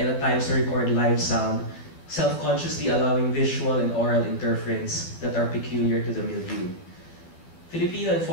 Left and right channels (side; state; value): right; late; 12 ms